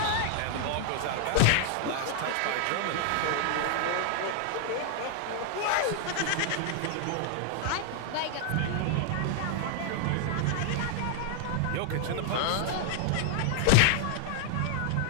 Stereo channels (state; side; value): different; both; correlation 0.00